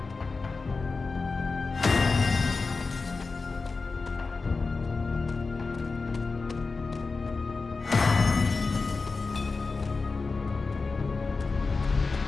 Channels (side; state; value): right; quieter; 4.1 dB